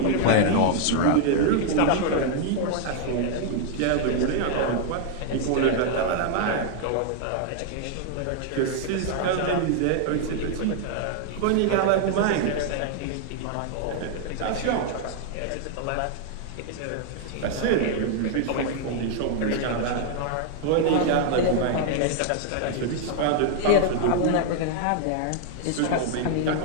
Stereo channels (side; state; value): both; different; correlation 0.00